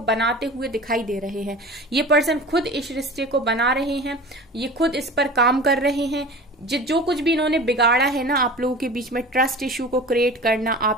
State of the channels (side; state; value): both; normal; correlation 0.37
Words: हुए दिखाई दे रहे हैं। ये पर्सन खुद इस रिश्ते को बना रहे हैं, ये खुद इस पर काम कर रहे हैं। जो कुछ भी इन्होंने बिगाड़ा है ना आप लोगों के बीच में, ट्रस्ट इश्यू को क्रिएट करना,